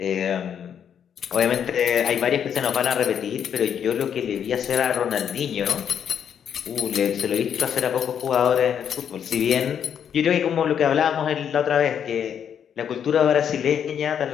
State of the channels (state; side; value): quieter; right; 8.4 dB